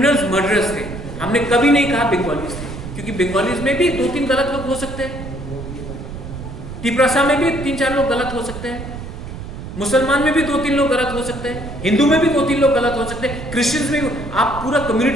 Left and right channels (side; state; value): right; noise; rumble, 10 dB below the sound